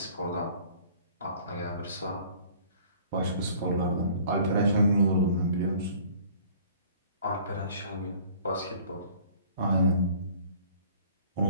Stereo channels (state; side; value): inverted; both; correlation -0.52